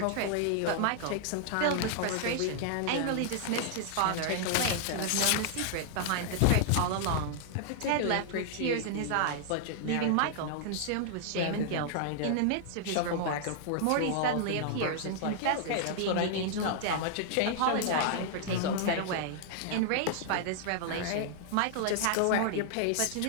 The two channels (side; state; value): both; different; correlation -0.01